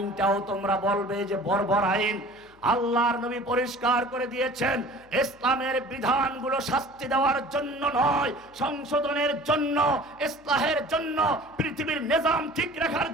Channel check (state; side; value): noise; left; hum, 29 dB below the sound